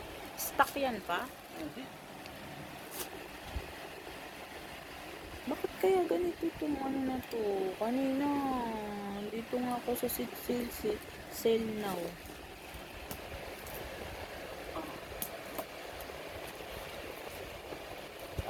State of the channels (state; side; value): identical; both; correlation 1.00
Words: Stock yan pa? Hindi. Bakit kaya ganito itong ano na to? Kanina, dito nga ako sa sale now.